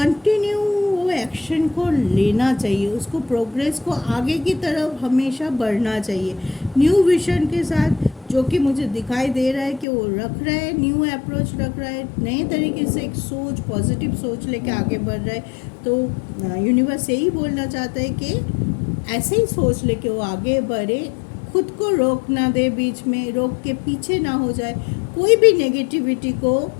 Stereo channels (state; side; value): drops out; right; at 9.9 s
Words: वो एक्शन को लेना चाहिए, उसको प्रोग्रेस को आगे की तरफ हमेशा बढ़ना चाहिए। न्यू विजन के साथ जो कि मुझे दिखाई दे रहा है कि वो रख रहा है, न्यू अप्रोच रख रहा है, नए तरीके से एक सोच, पॉजिटिव सोच लेके आगे बढ़ रहा है। तो यूनिवर्स यही बोलना चाहता है कि ऐसे ही सोच लेके वो आगे बढ़े, खुद को रोक ना दे, बीच में रोक के पीछे ना हो जाए, कोई भी नेगेटिविटी को